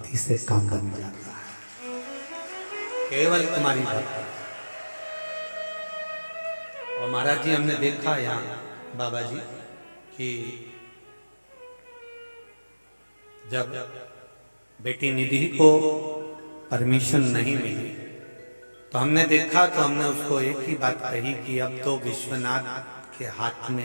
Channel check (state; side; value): inverted; both; correlation -1.00